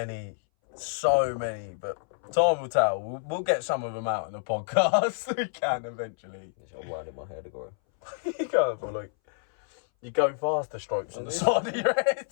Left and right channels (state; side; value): silent; right; 59 dB below the other